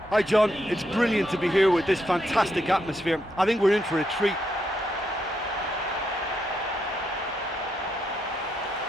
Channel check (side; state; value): both; normal; correlation 0.80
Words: Hi John, it's brilliant to be here with this fantastic atmosphere. I think we're in for a treat.